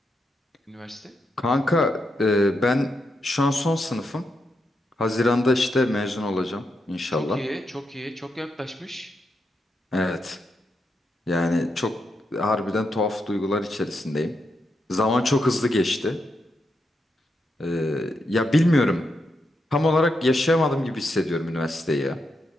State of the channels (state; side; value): normal; both; correlation 0.83